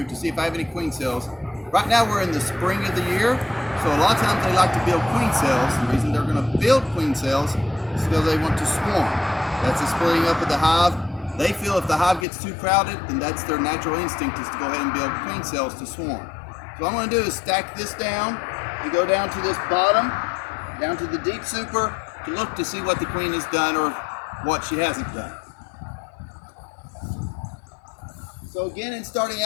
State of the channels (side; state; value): right; drops out; at 12.2 s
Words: to see if I have any queen cells. Right now we're in the spring of the year, so a lot of times they like to build queen cells. The reason they're going to build queen cells is because they want to swarm. That's the splitting up of the hive. They feel if the hive gets too crowded, then that's their natural instinct is to go ahead and build queen cells to swarm. So what I'm going to do is stack this down and go down to this bottom, down to the deep super, to look to see what the queen has done or what she hasn't done. So again, in starting